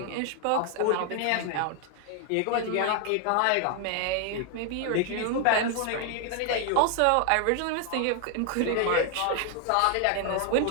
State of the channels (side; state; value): both; different; correlation 0.00